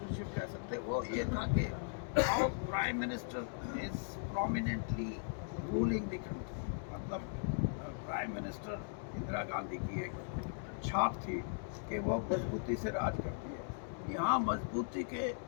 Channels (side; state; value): right; silent; digital silence